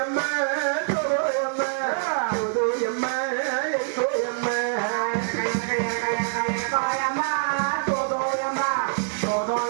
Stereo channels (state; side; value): silent; left; digital silence